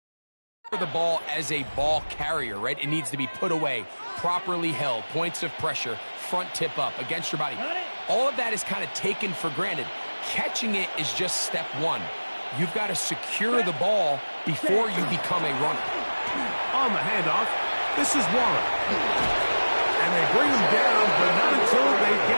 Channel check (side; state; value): both; inverted; correlation -1.00